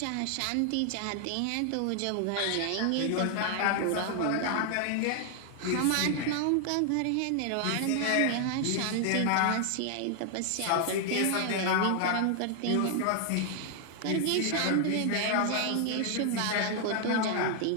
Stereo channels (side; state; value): both; different; correlation 0.00